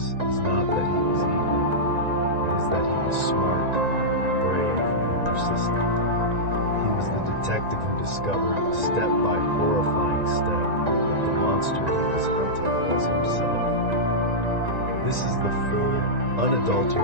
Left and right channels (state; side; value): late; left; 1.9 ms